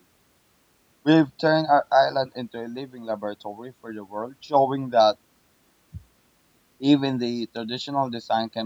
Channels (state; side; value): identical; both; correlation 1.00